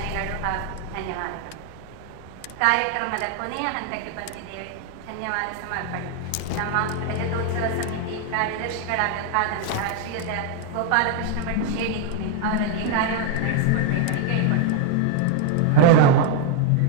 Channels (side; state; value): both; different; correlation 0.00